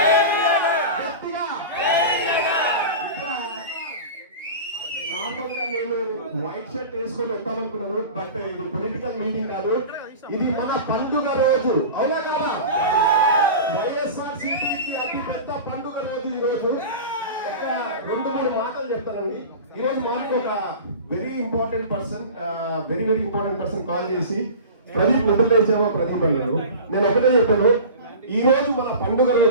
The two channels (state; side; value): inverted; both; correlation -0.34